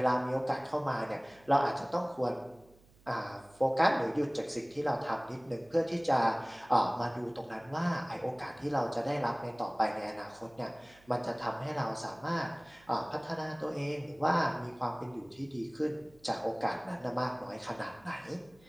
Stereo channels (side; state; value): right; noise; hum, 28 dB below the sound